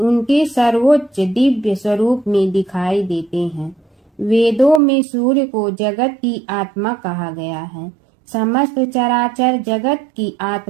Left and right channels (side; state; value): left; drops out; at 4.8 s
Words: सर्वोच्च दिव्य स्वरूप में दिखाई देते हैं। वेदों में सूर्य को जगत की आत्मा कहा गया है। समस्त चराचर जगत की